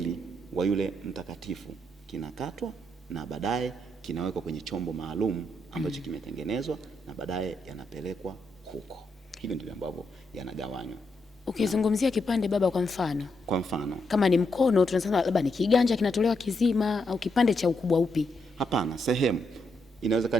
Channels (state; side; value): normal; both; correlation 0.80